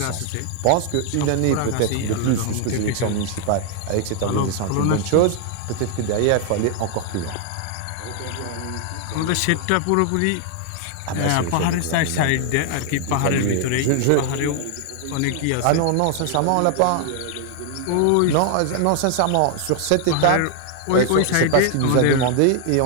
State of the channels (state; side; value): different; both; correlation 0.00